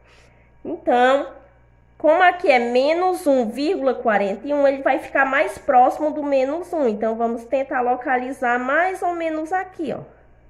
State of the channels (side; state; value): both; identical; correlation 1.00